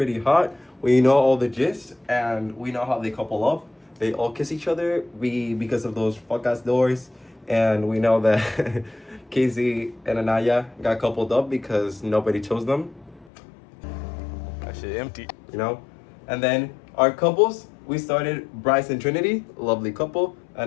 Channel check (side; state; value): right; drops out; at 13.3 s